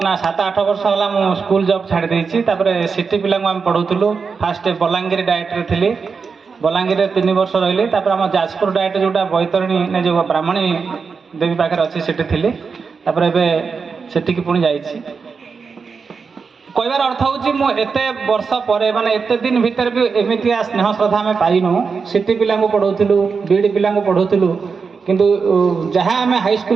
ना 7-8 वर्ष है मु स्कूल जॉब छाड़ देछि तापर सिटी पिला आम पढ़ाऊलु फास्ट बलांगीर डायरेक्टर थी बलांगीर 3 वर्ष रही तापर आम जाजपुर डायरेक्ट जोटा बैतरणी ने जो ब्राह्मणी देवी पाखे अच्छी सेठी थी तापर एबे सेठी पुणी जाइछि कहबार अर्थ हूँ एते वर्ष पर माने एते दिन भीतर भी एमती स्नेह श्रद्धा आम पाइनु सिटी पिला पढ़ाऊलु बीडी पिला पढ़ाऊलु किंतु जहाँ आम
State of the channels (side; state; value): left; quieter; 5.3 dB